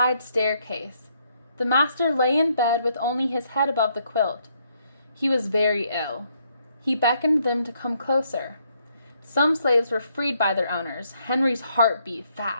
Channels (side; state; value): both; inverted; correlation -0.72